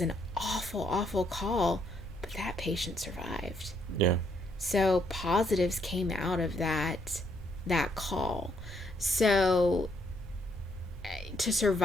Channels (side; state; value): both; normal; correlation 0.72